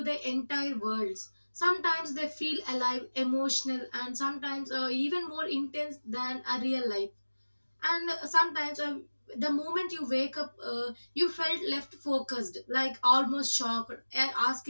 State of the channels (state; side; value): inverted; both; correlation -1.00